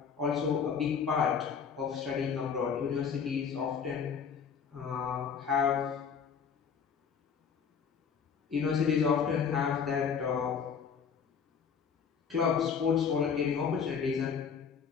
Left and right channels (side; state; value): right; quieter; 6.7 dB